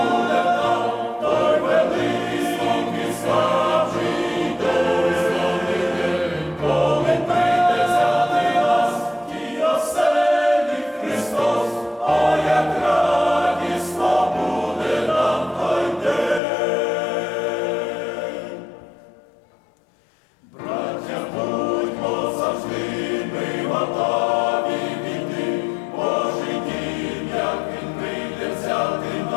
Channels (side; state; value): right; drops out; at 16.4 s